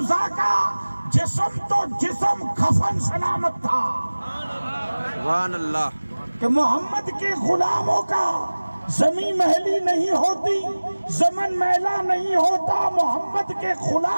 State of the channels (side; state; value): both; inverted; correlation -1.00